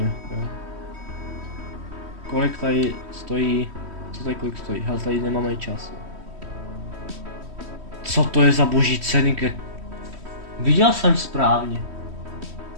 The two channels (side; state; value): left; late; 3.1 ms